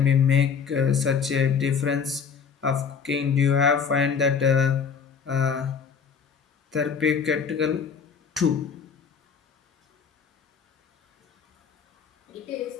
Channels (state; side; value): quieter; right; 6.3 dB